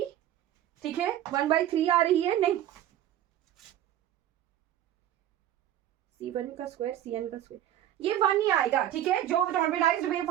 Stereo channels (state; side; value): quieter; left; 12.1 dB